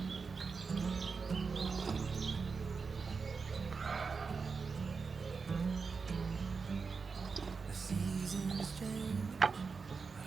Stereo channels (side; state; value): left; quieter; 5.0 dB